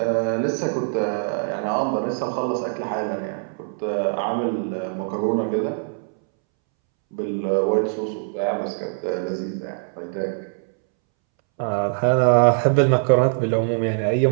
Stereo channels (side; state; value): left; silent; 64 dB below the other